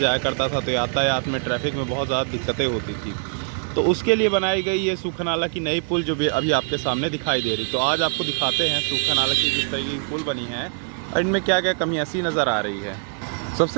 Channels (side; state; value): left; silent; 58 dB below the other